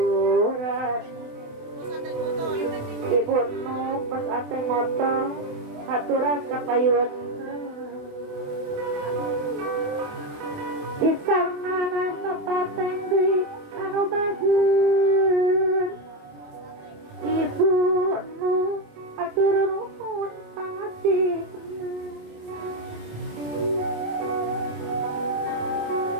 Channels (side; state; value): left; late; 27 ms